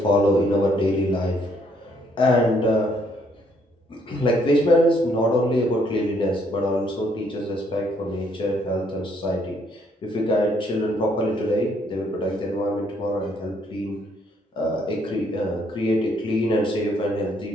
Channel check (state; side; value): normal; both; correlation 0.69